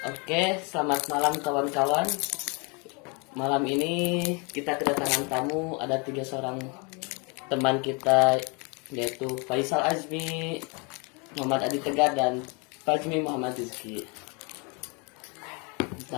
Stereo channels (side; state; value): right; quieter; 31.9 dB